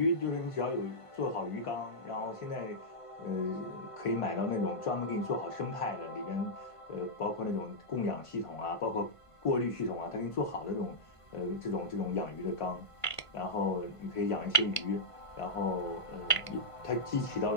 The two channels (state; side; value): late; right; 1.5 ms